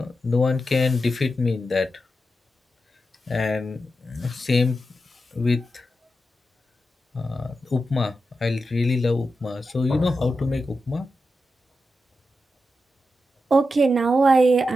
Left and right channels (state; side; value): normal; both; correlation 0.89